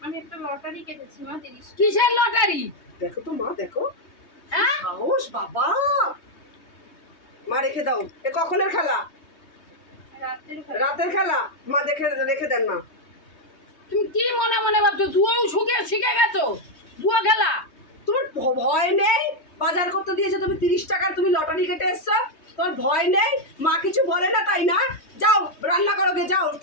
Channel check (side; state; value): right; late; 3.2 ms